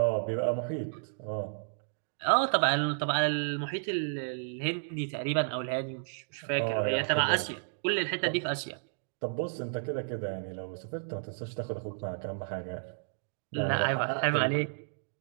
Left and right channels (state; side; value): silent; left; digital silence